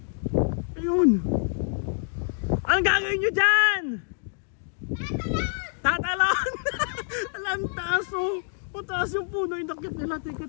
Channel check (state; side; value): silent; right; digital silence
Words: Ayun. Anong gagawin nyo dyan? Tatalon! Alam, taas taas yung puno. Yung dakit nila.